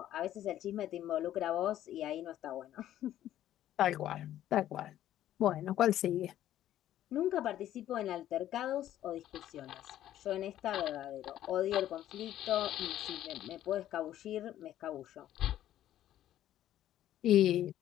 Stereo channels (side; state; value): right; quieter; 12.4 dB